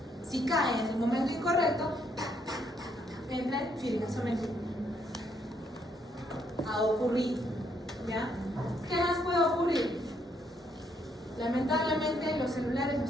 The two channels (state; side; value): normal; both; correlation 0.72